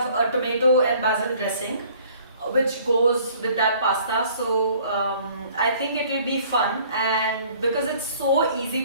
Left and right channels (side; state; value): both; inverted; correlation -0.56